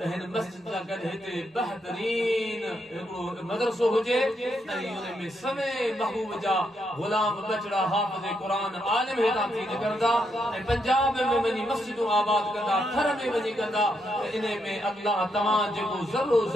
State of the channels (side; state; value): both; normal; correlation 0.79